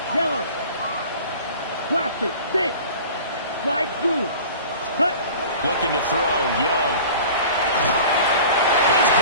yellow. Blaster, 6. Slide blue. Touch. Looking to throw, Young. He's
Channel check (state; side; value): inverted; both; correlation -0.42